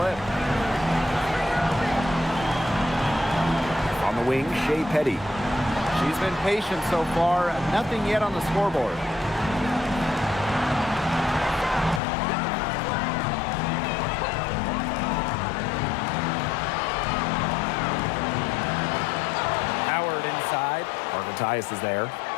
On the wing, Shea Petty. She's been patient so far. Nothing yet on the scoreboard. Howard inside. Parker Tyus is there.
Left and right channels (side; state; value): right; drops out; at 12.0 s